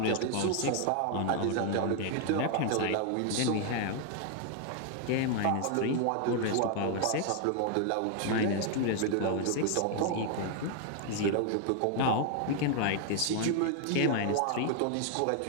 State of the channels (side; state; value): both; different; correlation 0.00